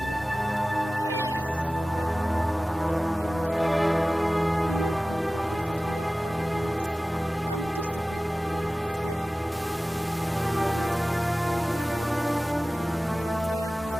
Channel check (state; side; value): normal; both; correlation 0.97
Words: we are gathered here. Yes. You're right, man. You must remember, no group progresses without orderliness and discipline. Yes. Huh? Honestly, we are very sorry.